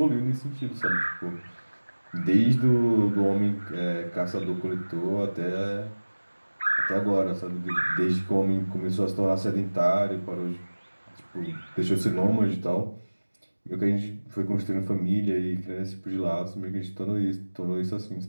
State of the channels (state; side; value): inverted; both; correlation -1.00